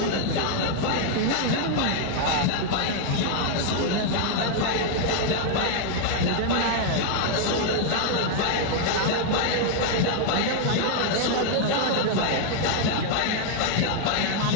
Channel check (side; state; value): both; different; correlation 0.00